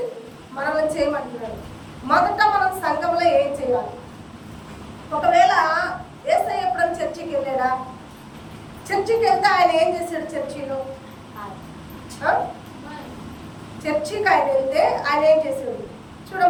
మనల్ని చేయమంటున్నాడు. మొదట మనం సంఘంలో ఏం చేయాలి? ఒకవేళ యేసయ్య ఎప్పుడైనా చర్చికి వెళ్ళాడా? చర్చికి వెళ్తే ఆయన ఏం చేశాడు? చర్చిలో చర్చికి ఆయన వెళ్తే ఆయన ఏం చేశాడు?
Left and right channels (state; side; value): identical; both; correlation 1.00